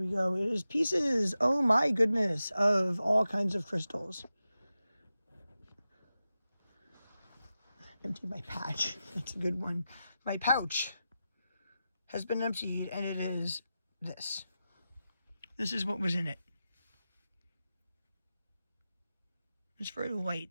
go. It is pieces, oh my goodness, of all kinds of crystals. Empty my patch. That's a good one. My pouch has been emptied, and it is this. This is what was in it. It's very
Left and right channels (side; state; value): both; inverted; correlation -0.92